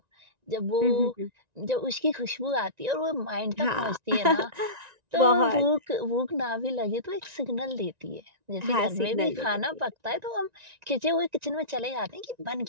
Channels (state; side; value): late; left; 1.9 ms